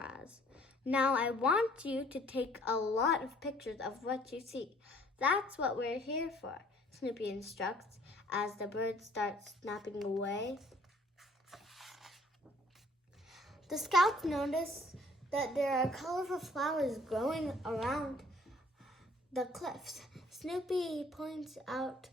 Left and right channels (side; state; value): both; normal; correlation 0.58